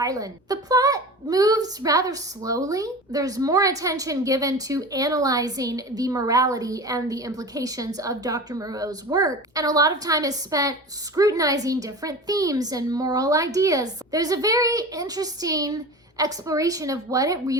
The plot moves rather slowly. There's more attention given to analyzing the morality and the implications of Dr. Moreau's work, and a lot of time is spent scrutinizing different themes and moral ideas. There's a very interesting exploration of what it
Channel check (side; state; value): both; normal; correlation 0.33